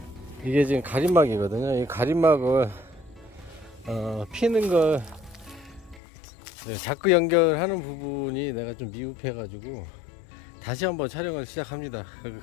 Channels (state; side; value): drops out; right; at 6.0 s